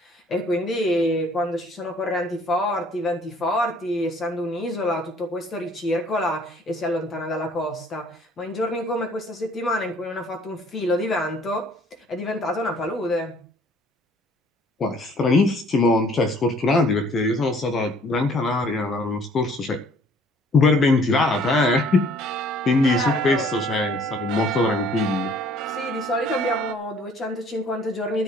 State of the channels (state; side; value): normal; both; correlation 0.58